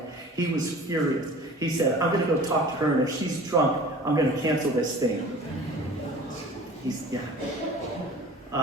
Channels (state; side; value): normal; both; correlation 0.43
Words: He was furious. He said, I'm going to go talk to her, and if she's drunk, I'm going to cancel this thing.